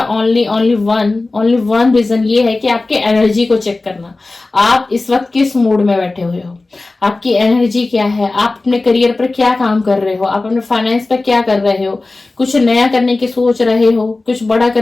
ओनली वन रीजन ये है कि आपके एनर्जी को चेक करना, आप इस वक्त किस मूड में बैठे हुए हो, आपकी एनर्जी क्या है, आप अपने करियर पर क्या काम कर रहे हो, आप अपने फाइनेंस पर क्या कर रहे हो, कुछ नया करने की सोच रहे हो, कुछ बड़ा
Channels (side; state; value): right; quieter; 3.3 dB